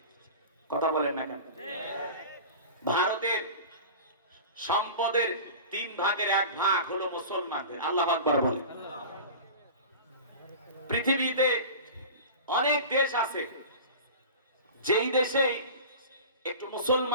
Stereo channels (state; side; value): inverted; both; correlation -0.35